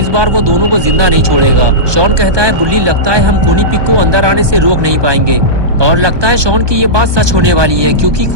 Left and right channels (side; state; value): left; late; 1.2 ms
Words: बार वो दोनों को जिंदा नहीं छोड़ेगा। शॉन कहता है, बुल्ली लगता है हम खूनी पिग को अंदर आने से रोक नहीं पाएंगे। और लगता है शॉन की ये बात सच होने वाली है, क्योंकि